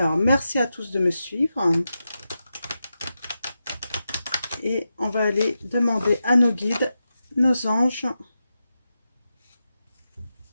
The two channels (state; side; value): inverted; both; correlation -0.89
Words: merci à tous de me suivre. Et on va aller demander à nos guides, nos anges,